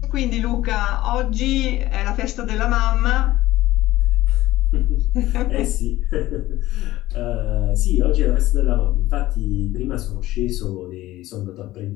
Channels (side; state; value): right; quieter; 16.4 dB